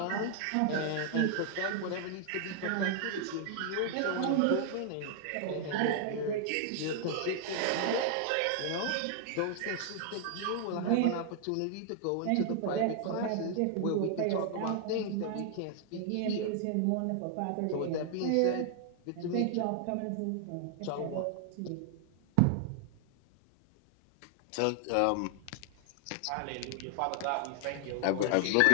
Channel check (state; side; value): different; both; correlation 0.00